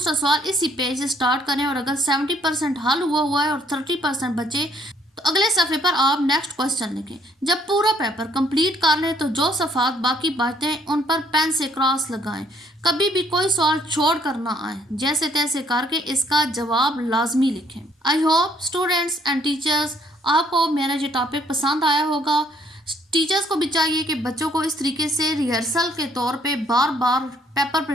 सवाल इसी पेज से स्टार्ट करें, और अगर 70% हल हुआ है और 30% बचे तो अगले सफ़े पर आप नेक्स्ट क्वेश्चन लिखें। जब पूरा पेपर कंप्लीट कर लें तो जो सफ़ात बाकी बचते हैं उन पर पेन से क्रॉस लगाएं। कभी भी कोई सवाल छोड़ कर ना आए, जैसे तैसे करके इसका जवाब लाजमी लिखें। I hope students and teachers आपको मेरा ये टॉपिक पसंद आया होगा। टीचर्स को भी चाहिए कि बच्चों को इस तरीके से रिहर्सल के तौर पे बार बार पेपर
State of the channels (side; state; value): both; normal; correlation 0.65